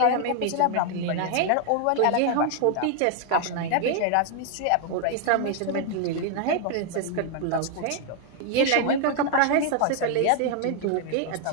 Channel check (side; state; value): both; different; correlation 0.00